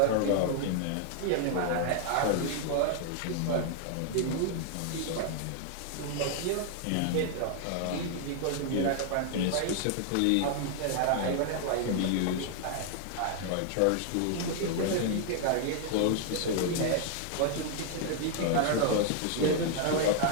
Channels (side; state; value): both; different; correlation 0.00